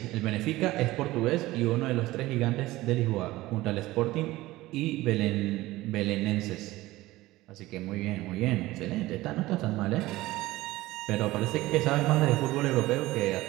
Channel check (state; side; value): quieter; left; 18.0 dB